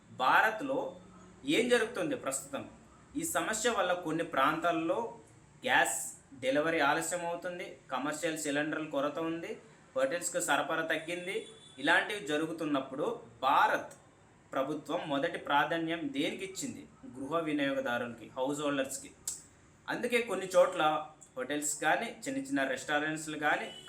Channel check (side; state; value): both; identical; correlation 1.00